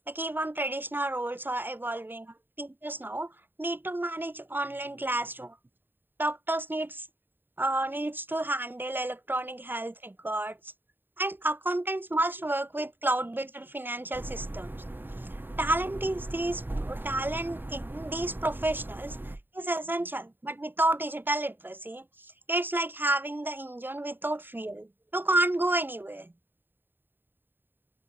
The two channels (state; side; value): late; left; 0.095 ms